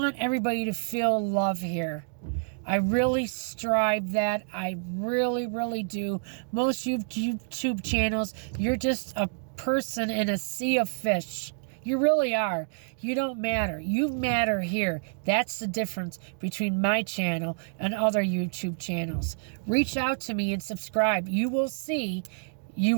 everybody to feel love here. I really strive that. I really, really do. Most YouTube channels, you're just a person in a sea of fish. You really are. You don't matter. You matter here. That's the difference between my channel and other YouTube channels. Reach out to me and subscribe. You will see. You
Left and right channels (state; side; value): silent; left; digital silence